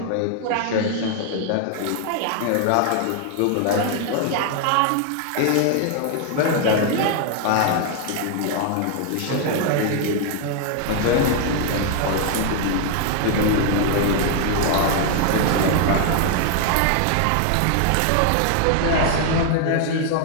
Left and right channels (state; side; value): different; both; correlation 0.00